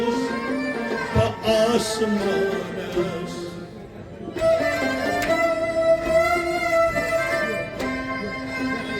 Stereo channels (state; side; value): identical; both; correlation 1.00